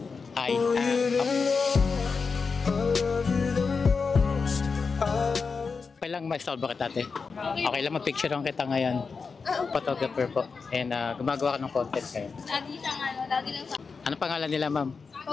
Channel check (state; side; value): quieter; right; 5.0 dB